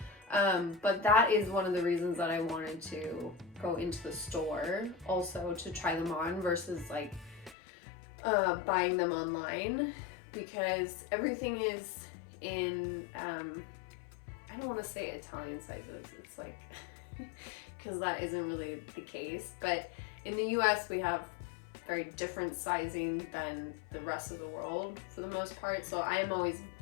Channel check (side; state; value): right; drops out; at 7.6 s